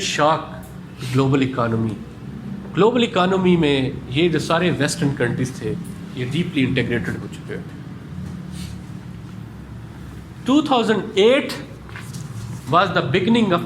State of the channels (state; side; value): identical; both; correlation 1.00